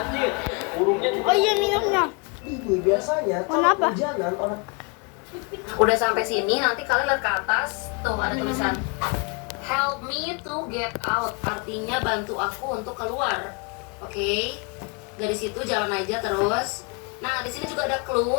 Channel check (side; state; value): right; quieter; 32.4 dB